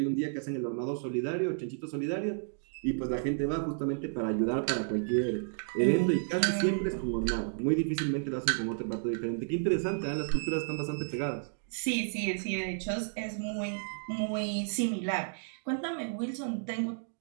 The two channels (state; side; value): silent; left; digital silence